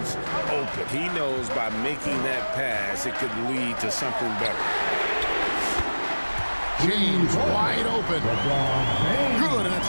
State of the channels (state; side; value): inverted; both; correlation -1.00